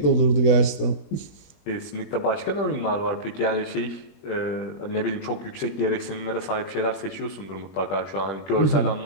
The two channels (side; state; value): right; late; 20 ms